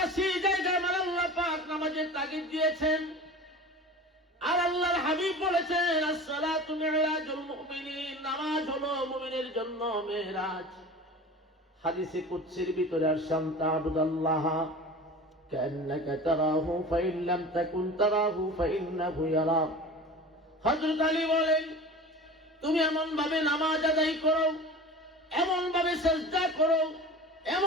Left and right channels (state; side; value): normal; both; correlation 0.36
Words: জায়গায় আমার আল্লাহ পাক নামাজের তাগিদ দিয়েছেন। আর আল্লাহর হাবিব বলেছেন, as-সালাতু মি'রাজুল মুমিনিন, নামাজ হলো মুমিনের জন্য মেরাজ। হাদিসে কুদসির ভিতরে আসসাম তা'বুদাল্লাহ কান্নাকা তারাহু ফাইন লাম তাকুন তারাহু ফাইন্নাহু ইয়ারাক। হযরত আলী বলেন, তুমি এমন ভাবে নামাজ আদায় করো, এমন ভাবে সিজদা করো,